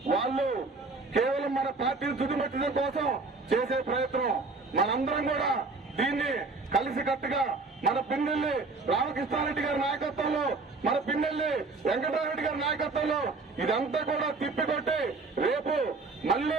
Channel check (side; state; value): left; quieter; 3.8 dB